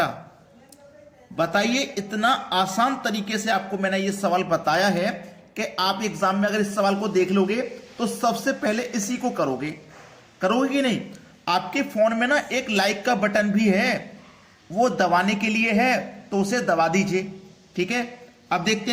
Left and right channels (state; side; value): identical; both; correlation 1.00